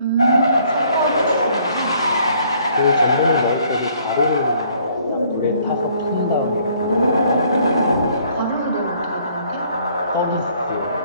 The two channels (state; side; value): inverted; both; correlation -0.62